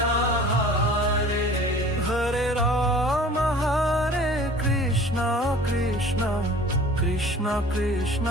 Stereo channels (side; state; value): both; normal; correlation 0.46